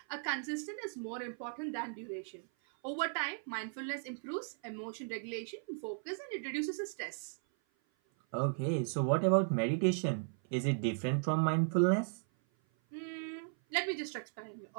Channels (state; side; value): silent; left; 54 dB below the other